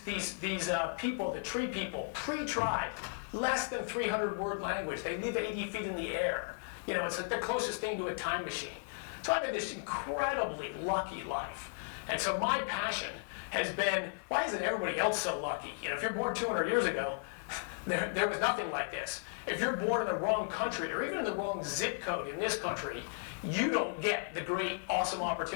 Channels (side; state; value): right; silent; 54 dB below the other